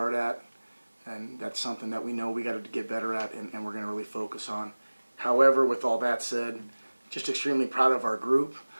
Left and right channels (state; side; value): inverted; both; correlation -1.00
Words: at, and that's something that we know we got to get better at, and we're going to really focus on. However, with all that said, just extremely proud of our group.